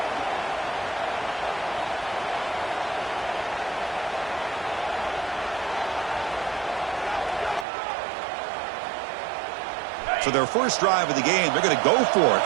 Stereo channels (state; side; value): drops out; left; at 7.7 s